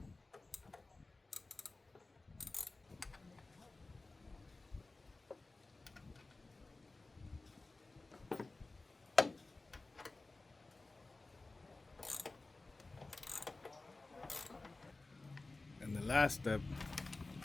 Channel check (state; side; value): quieter; right; 3.3 dB